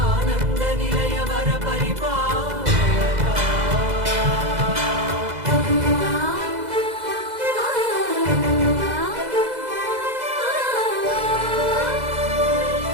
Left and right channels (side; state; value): left; late; 2.0 ms